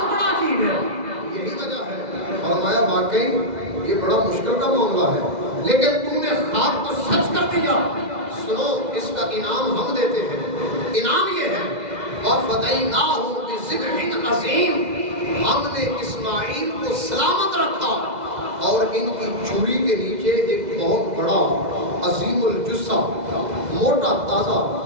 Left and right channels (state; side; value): late; left; 2.0 ms